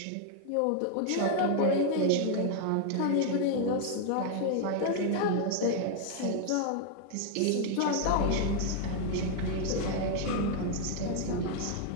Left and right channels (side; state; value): both; different; correlation 0.00